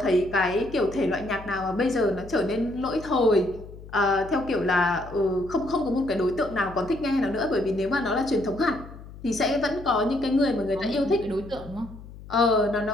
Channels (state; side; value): noise; left; hum, 16 dB below the sound